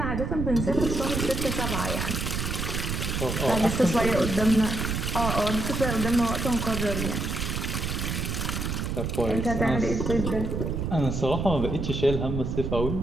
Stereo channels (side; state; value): right; noise; rumble, 2 dB below the sound